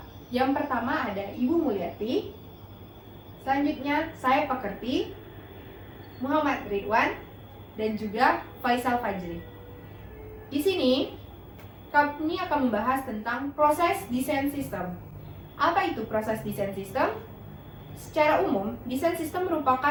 Yang pertama ada Ibu Mulyati. Selanjutnya saya Pakerti, Muhammad Ridwan, dan juga Faisal Fajri. Di sini kami akan membahas tentang proses desain sistem. Apa itu proses desain sistem? Secara umum, desain sistem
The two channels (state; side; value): identical; both; correlation 1.00